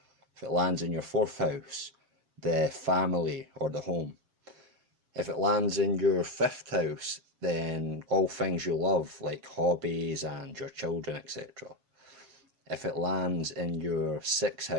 If it lands in your fourth house, the family or the home. If it lands in your fifth house, then all things you love, like hobbies and your children, etc. If it lands in your sixth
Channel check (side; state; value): left; late; 7.3 ms